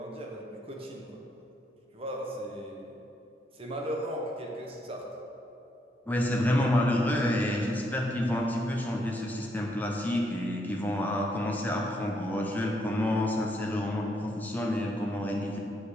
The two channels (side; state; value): both; normal; correlation 0.75